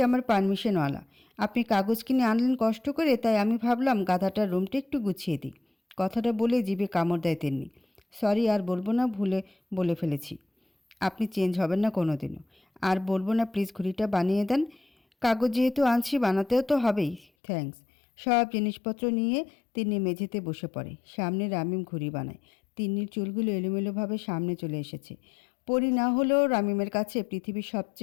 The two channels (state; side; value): drops out; right; at 17.2 s